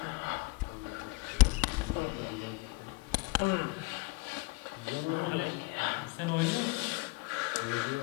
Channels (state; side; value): quieter; right; 23.7 dB